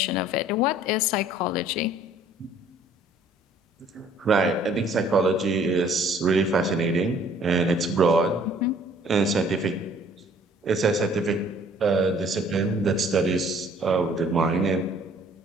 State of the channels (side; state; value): both; normal; correlation 0.57